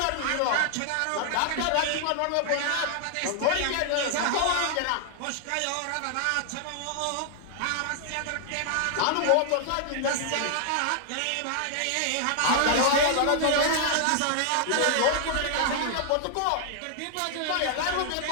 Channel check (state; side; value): different; both; correlation 0.00